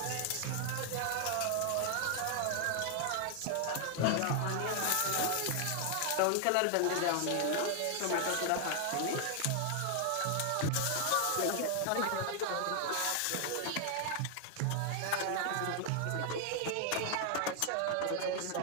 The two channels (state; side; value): different; both; correlation 0.00